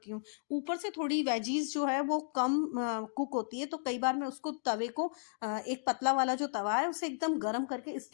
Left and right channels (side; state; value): right; silent; digital silence